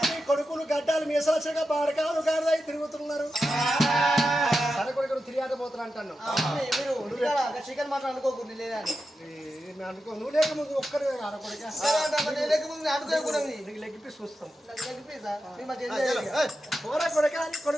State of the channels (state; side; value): normal; both; correlation 0.90